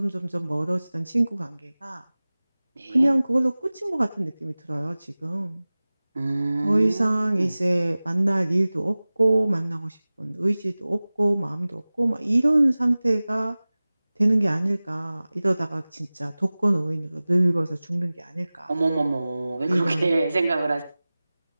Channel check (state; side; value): inverted; both; correlation -0.98